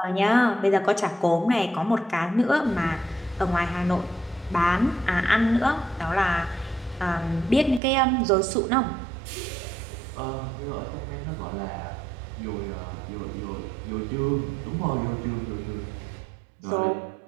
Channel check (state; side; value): drops out; left; at 7.8 s